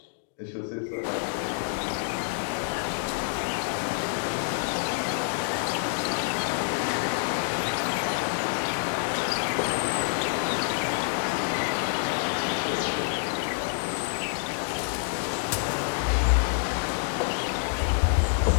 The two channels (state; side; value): silent; right; digital silence